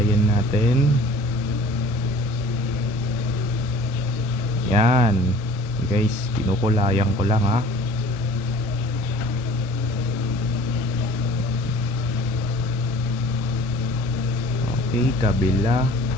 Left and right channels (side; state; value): both; normal; correlation 0.48